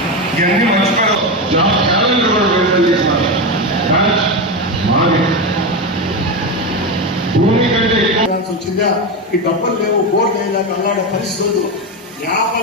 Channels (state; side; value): normal; both; correlation 0.15